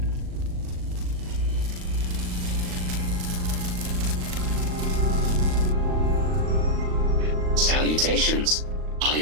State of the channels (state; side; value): late; left; 38 ms